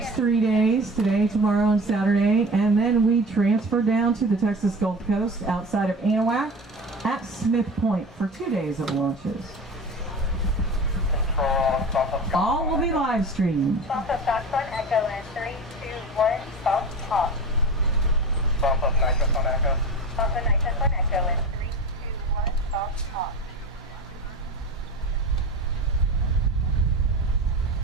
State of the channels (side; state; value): both; normal; correlation 0.32